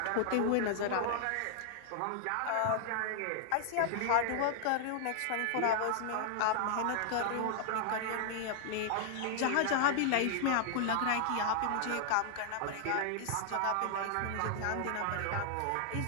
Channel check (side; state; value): both; different; correlation 0.00